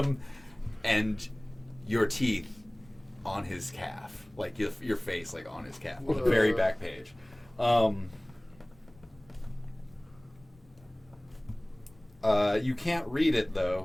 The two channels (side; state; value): left; noise; rumble, 27 dB below the sound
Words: and your teeth on his calf, like your face, like on his calf, on the very back page. You can't read it